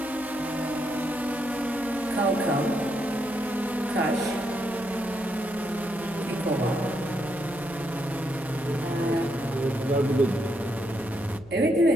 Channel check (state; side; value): noise; right; hum, 21 dB below the sound